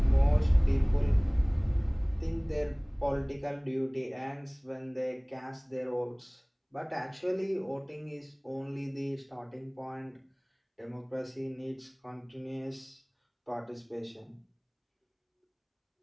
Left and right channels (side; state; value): both; identical; correlation 1.00